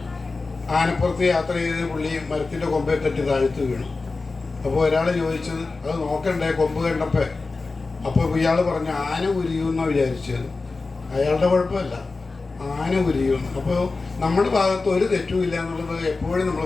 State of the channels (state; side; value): quieter; right; 3.8 dB